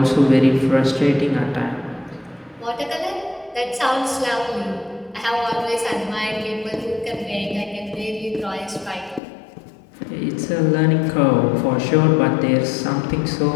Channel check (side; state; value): right; drops out; at 9.2 s